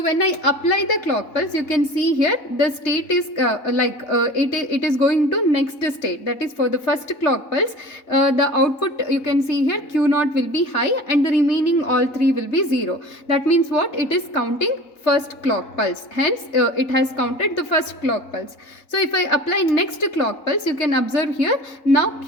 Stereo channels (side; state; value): right; late; 3.3 ms